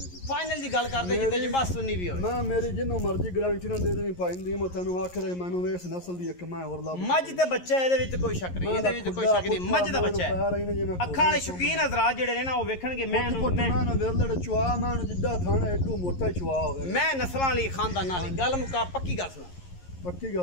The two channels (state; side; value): late; right; 11 ms